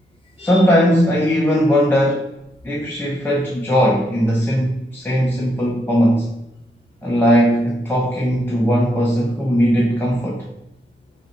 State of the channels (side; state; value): both; normal; correlation 0.77